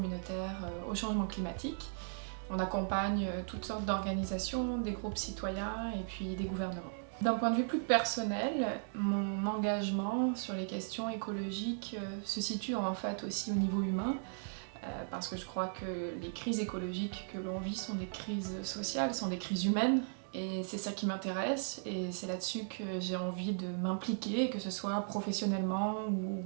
au changement climatique. On accompagne toutes sortes d'organisations, des groupes citoyens et puis des gouvernements. D'un point de vue plus personnel, mon engagement sur les questions écologiques se situe en fait aussi au niveau humain, parce que je crois que les crises écologiques que l'on vit sont des crises sociales, sont des crises humaines, et c'est ça qui m'intéresse, et c'est là-dessus que j'ai envie de m'impliquer, que ce soit professionnellement ou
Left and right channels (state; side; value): silent; left; 53 dB below the other